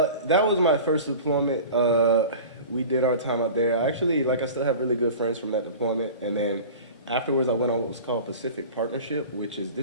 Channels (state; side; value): inverted; both; correlation -0.37